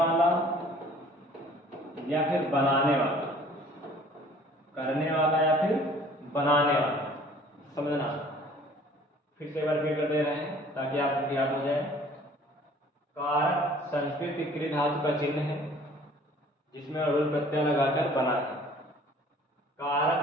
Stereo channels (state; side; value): normal; both; correlation 0.52